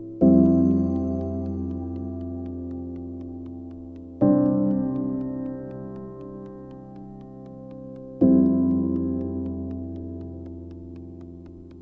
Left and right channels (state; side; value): identical; both; correlation 1.00